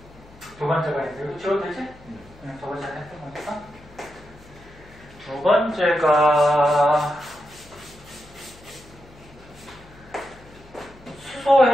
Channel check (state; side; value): noise; left; hum, 23 dB below the sound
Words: 있는데 이거 지워도 되지? 저번 시간에 했던 거니까. 두 번째가 수소